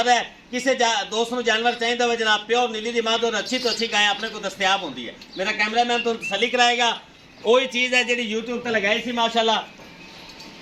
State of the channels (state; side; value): identical; both; correlation 1.00